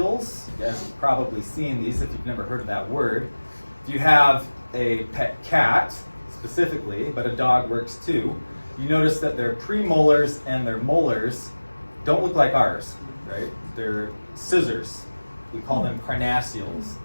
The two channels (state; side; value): inverted; both; correlation -1.00